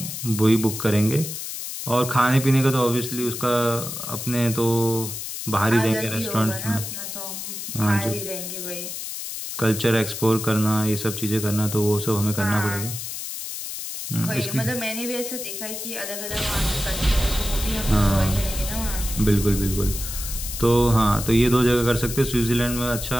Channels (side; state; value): left; noise; hiss, 7 dB below the sound